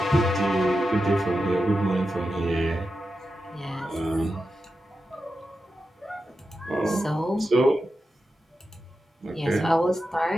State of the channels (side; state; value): both; normal; correlation 0.90